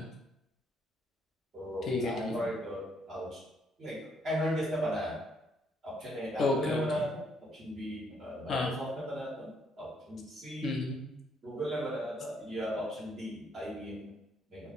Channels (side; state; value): both; normal; correlation 0.70